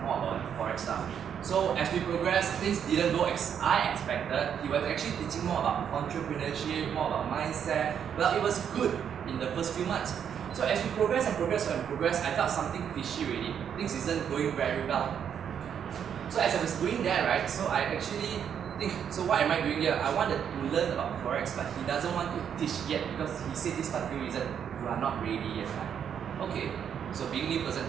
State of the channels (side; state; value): left; quieter; 8.3 dB